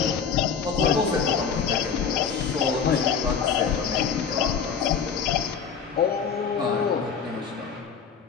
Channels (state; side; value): quieter; right; 6.5 dB